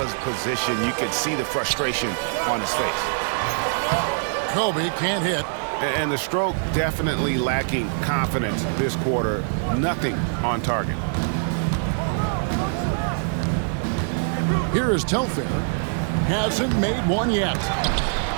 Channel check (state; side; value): silent; left; digital silence